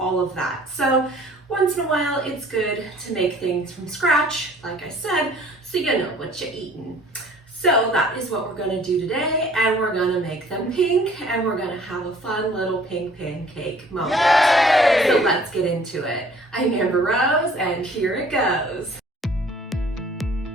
of that. So once in a while it's good to make things from scratch, like I said, so you know what you're eating. So that is what we're gonna do today, and we're gonna make them pink, and we're gonna have a fun little pink pancake moment. Yay! So let's get into it. I'm Amber Rose, and here it goes.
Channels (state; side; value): normal; both; correlation 0.53